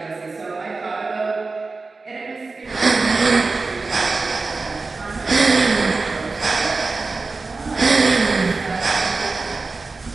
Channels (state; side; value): quieter; left; 3.9 dB